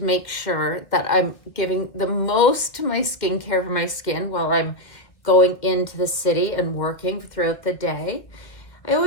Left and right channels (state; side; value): late; right; 1.7 ms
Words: make sure that I'm giving the most to my skincare for my skin while I'm going into the city and working throughout the day. I